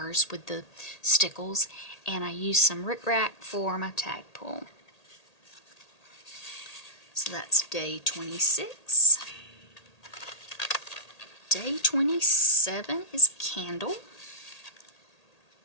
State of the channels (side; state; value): right; late; 1.8 ms